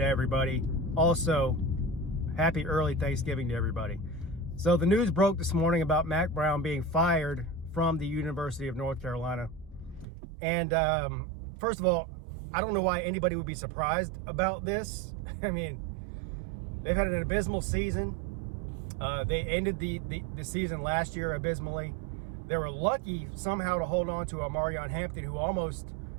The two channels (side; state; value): left; drops out; at 10.1 s